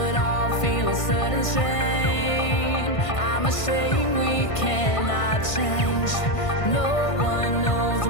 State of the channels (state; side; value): late; right; 1.5 ms